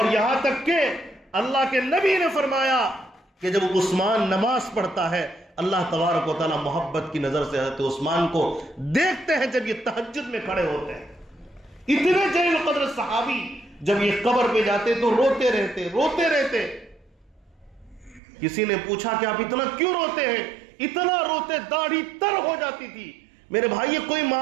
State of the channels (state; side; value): drops out; left; at 18.2 s